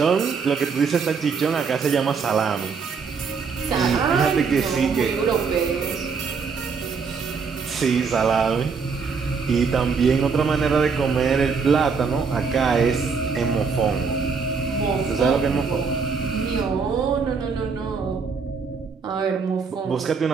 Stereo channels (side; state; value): left; quieter; 5.4 dB